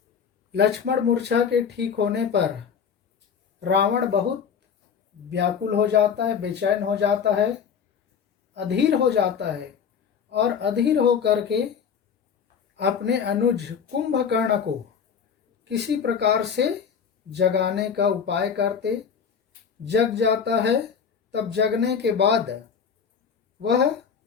लक्ष्मण मूर्छा के ठीक होने पर रावण बहुत व्याकुल हो जाता है, बेचैन हो जाता है, अधीर हो जाता है और अधीर हो करके अपने अनुज कुंभकर्ण को किसी प्रकार से जगाने का उपाय करते। जग जाता है। तब जगने के बाद वह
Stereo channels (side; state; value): right; quieter; 6.9 dB